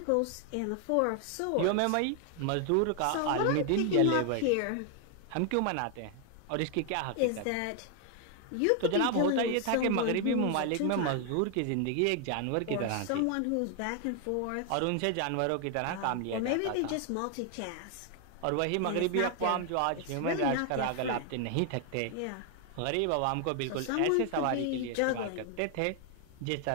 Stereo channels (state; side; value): different; both; correlation 0.00